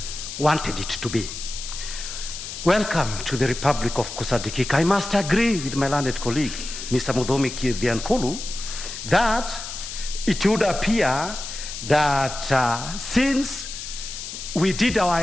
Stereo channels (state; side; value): noise; left; hiss, 9 dB below the sound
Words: wanted it to be? Welcome to the Republic of Kusadikika. I must agree with my learned colleague, Mr. Mudomi Kidiankulu, that it would appear that since we did